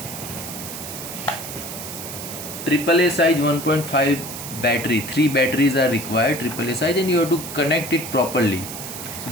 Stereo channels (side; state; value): right; noise; hiss, 9 dB below the sound